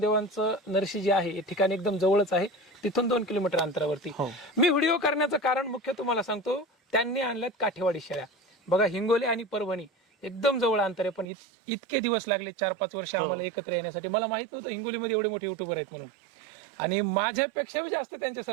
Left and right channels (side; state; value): left; drops out; at 11.2 s